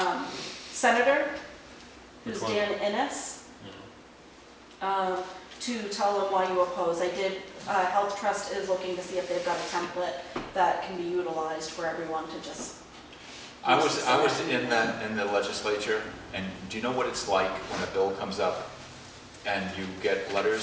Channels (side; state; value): both; identical; correlation 1.00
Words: senator, who's Which one? Dan Innes, to tell them why you oppose. Health Trust is looking to see if they've got a template that can be utilized for everyone to just. I was in the legislature, and do you know what it's like when a bill comes up and you get